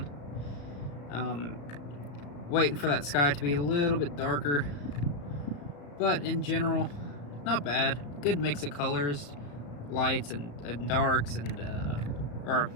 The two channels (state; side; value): late; right; 35 ms